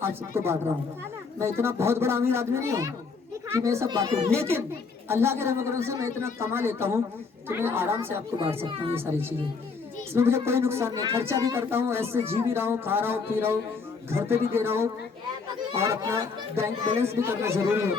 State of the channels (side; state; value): right; quieter; 4.9 dB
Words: आज सबको बांट रहा हूँ। मैं इतना बहुत बड़ा अमीर आदमी नहीं हूँ कि मैं सब बांटूं, लेकिन अल्लाह के रहम करम से मैं इतना कमा लेता हूँ कि मैं आराम से आपको बांट सकता हूँ ये सारी चीजें। इसमें मुझे कोई नुकसान नहीं, खर्चा भी करता हूँ, ऐसे जी भी रहा हूँ, खा रहा हूँ, पी रहा हूँ, घर पे भी दे रहा हूँ और अपना बैंक बैलेंस भी करना जरूरी